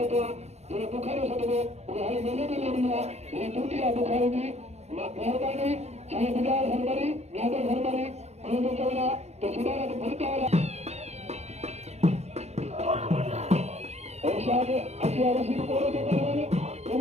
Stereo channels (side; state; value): left; late; 0.31 ms